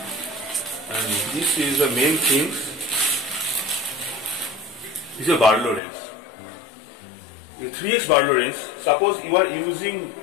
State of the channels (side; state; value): right; drops out; at 5.8 s